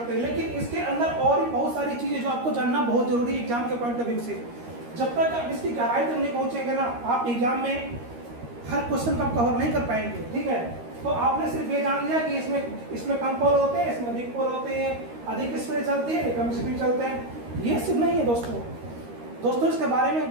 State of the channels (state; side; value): late; left; 13 ms